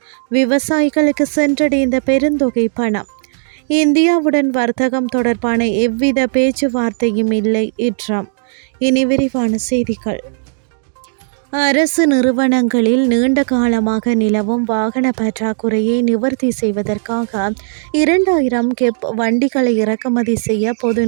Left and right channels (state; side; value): silent; left; digital silence